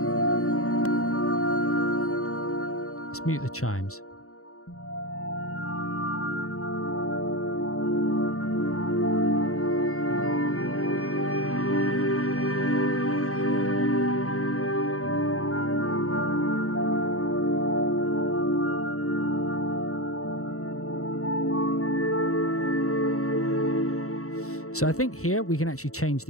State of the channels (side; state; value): right; late; 0.64 ms